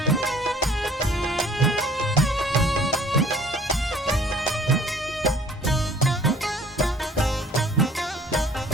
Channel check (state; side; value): normal; both; correlation 0.53